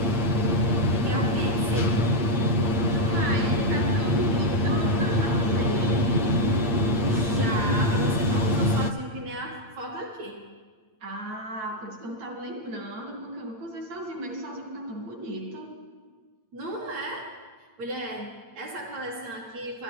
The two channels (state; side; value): late; left; 8.8 ms